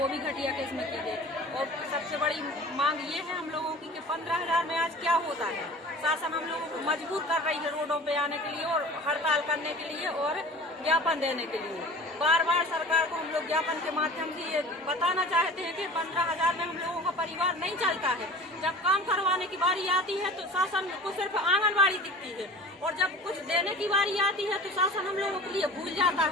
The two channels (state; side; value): normal; both; correlation 0.40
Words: वो भी घटिया किस्म की है। और सबसे बड़ी मांग ये है हम लोगों की कि 15,000 में आज क्या होता है। शासन हम लोगों को मजबूर कर रही है रोडों पे आने के लिए और हड़ताल करने के लिए और ज्ञापन देने के लिए। बार बार सरकार को हम लोग ज्ञापन के माध्यम से ये बताना चाहते हैं कि 15,000 में हम लोगों का परिवार नहीं चलता है। जब काम करवाने की बारी आती है तो शासन को सिर्फ आंगनबाड़ी दिखती है और जब कुछ देने की बारी आती है तो शासन हम लोगों के लिए भूल जाता